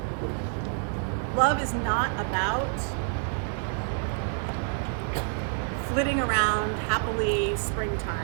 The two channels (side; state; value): left; silent; 59 dB below the other